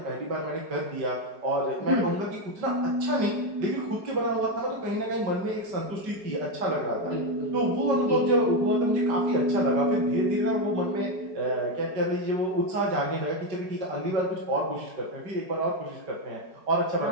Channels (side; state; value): left; late; 5.3 ms